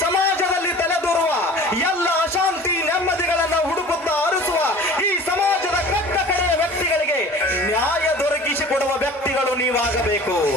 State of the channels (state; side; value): normal; both; correlation 0.43